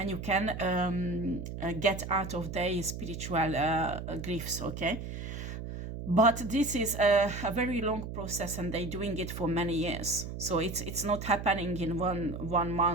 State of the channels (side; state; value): right; noise; hum, 7 dB below the sound